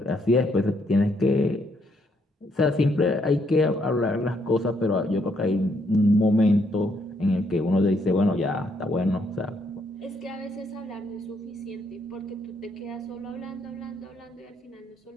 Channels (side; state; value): both; normal; correlation 0.73